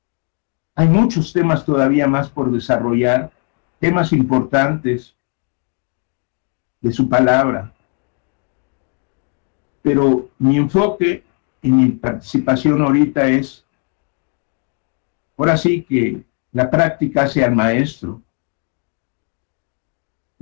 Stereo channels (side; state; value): right; quieter; 36.7 dB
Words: Hay muchos temas todavía más por desarrollar, temas importantes de su palabra, pero mi enfoque y mi participación ahorita es, ahora sí que la práctica hace al maestro.